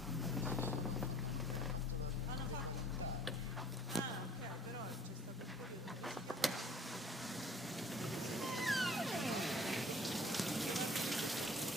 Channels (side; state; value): both; normal; correlation 0.52